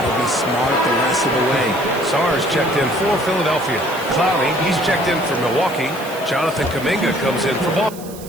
to be smart the rest of the way. Sars checked in for Philadelphia. Clowney, he's checked in for Milwaukee. Jonathan Kuminga comes in for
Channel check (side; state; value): right; noise; hiss, 17 dB below the sound